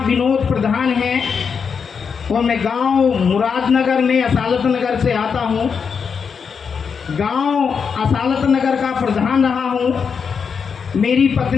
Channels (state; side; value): quieter; right; 6.2 dB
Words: विनोद प्रधान है और मैं गांव मुरादनगर में असालत नगर से आता हूँ। गांव असालत नगर का प्रधान रहा हूँ। मेरी